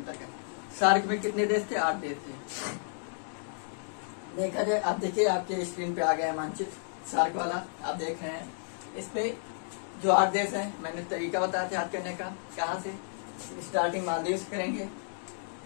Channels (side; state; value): right; silent; digital silence